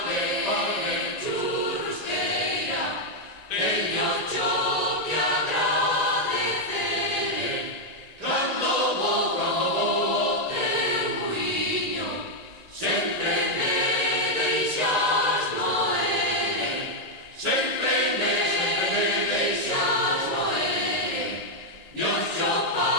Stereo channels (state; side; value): late; right; 1.9 ms